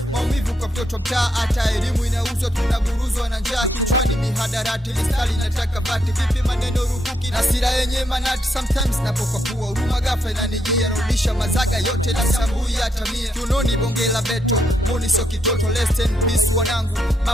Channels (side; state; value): both; normal; correlation 0.78